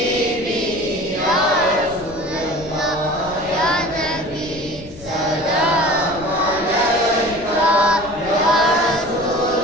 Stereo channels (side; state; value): left; noise; rumble, 18 dB below the sound